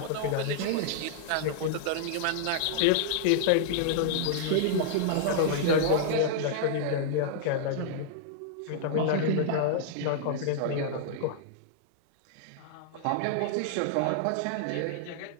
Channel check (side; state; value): both; different; correlation -0.01